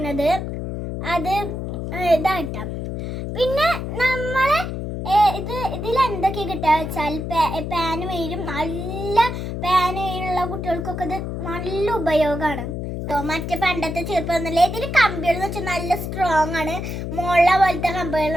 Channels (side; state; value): left; noise; hum, 5 dB below the sound